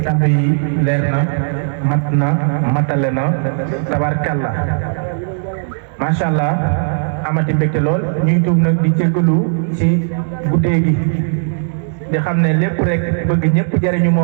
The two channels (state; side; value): silent; left; digital silence